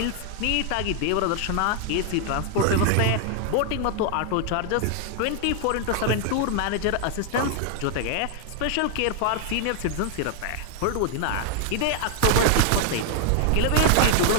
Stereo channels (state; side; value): different; both; correlation 0.00